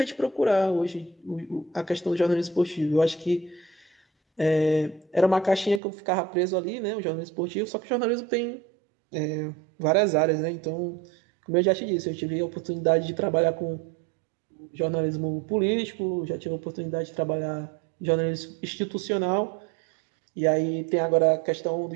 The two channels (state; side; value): drops out; left; at 5.8 s